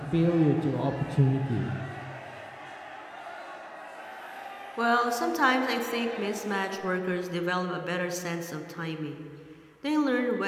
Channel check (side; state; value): both; identical; correlation 1.00